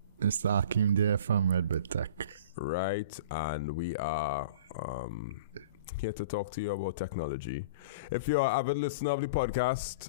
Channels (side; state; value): both; inverted; correlation -0.40